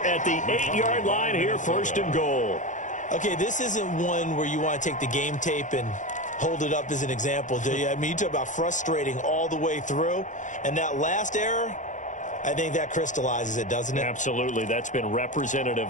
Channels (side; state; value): right; late; 0.36 ms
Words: at the 8-yard line here, first and goal. Okay, this isn't one where you want to take the game tape and hold it up as an example, do you? I mean, you talk about frustrating all the way through. And that last error, I think that crystallizes it, doesn't it? Absolutely. That's been representative